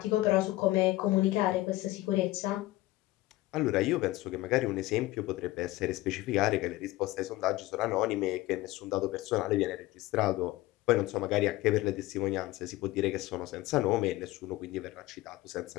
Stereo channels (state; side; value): quieter; right; 18.0 dB